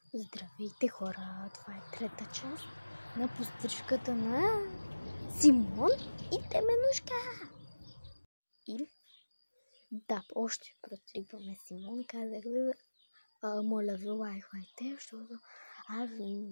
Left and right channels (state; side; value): inverted; both; correlation -1.00